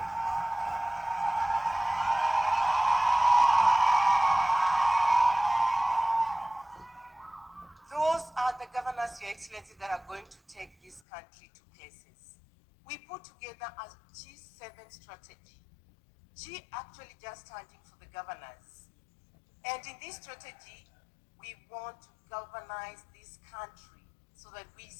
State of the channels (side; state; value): right; drops out; at 11.0 s